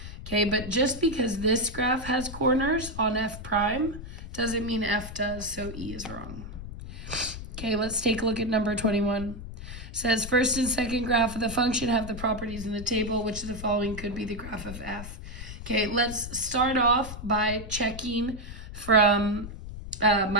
Okay, but just because this graph has corners on f prime doesn't mean f does, so E is wrong. Okay, let's take a look at number 21. It says first and second graph of the function have the properties in the table. Which of the following could be the graph of f? Okay, let's start off by checking from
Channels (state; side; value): noise; left; rumble, 10 dB below the sound